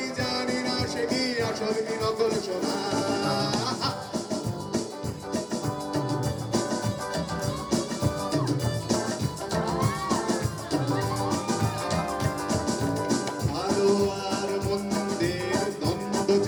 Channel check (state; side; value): identical; both; correlation 1.00